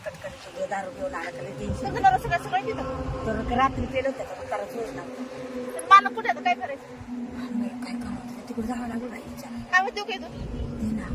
कटकन सगळं दारू घेऊन आला त्याला टेन्शन सगळं सगळं सगळं तिथं तर रात्री पेलं होतं तर त्याला सोड ना तर मला कुठे आता काय करायचं काय काम होतं तिकडे जावं लागलं बाई काय म्हणते काय तू ते ना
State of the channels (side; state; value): both; identical; correlation 1.00